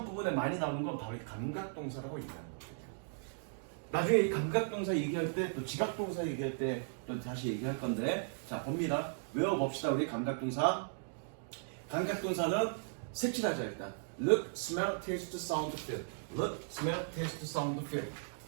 부분에 많이 나오는 건 바로 이 감각동사라고 얘기하는 거예요. 나중에 이 감각동사 얘기할 때 또 지각동사 얘기할 때 또 다시 얘기할 건데, 자 봅니다. 외워봅시다. 우리 감각동사. 감각동사는 색칠하자 일단. Look, smell, taste, sound, feel. Look, smell, taste, sound, feel.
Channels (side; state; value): left; silent; digital silence